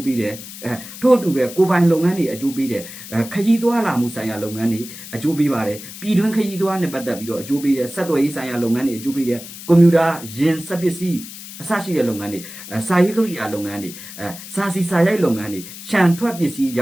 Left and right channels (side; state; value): left; noise; hiss, 13 dB below the sound